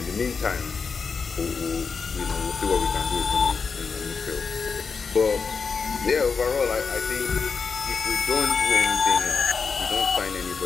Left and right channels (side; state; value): right; quieter; 5.3 dB